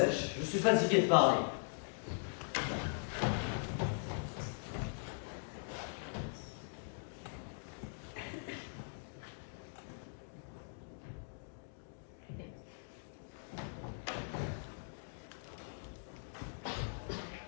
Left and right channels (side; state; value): right; silent; digital silence